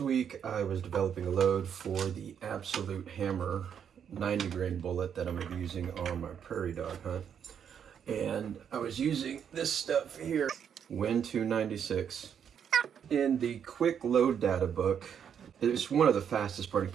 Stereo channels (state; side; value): quieter; left; 8.1 dB